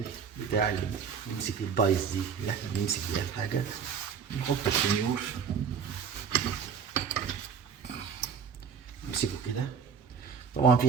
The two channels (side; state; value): left; quieter; 6.7 dB